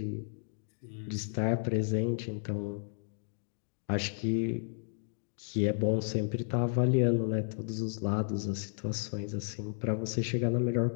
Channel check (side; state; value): right; silent; digital silence